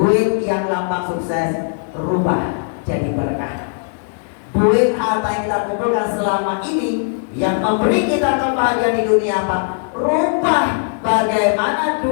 yang lambang sukses rubah jadi berkah. Duit harta yang kita kumpulkan selama ini yang memberi kita kebahagiaan di dunia Pak, rubah bagaimana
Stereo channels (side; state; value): right; silent; digital silence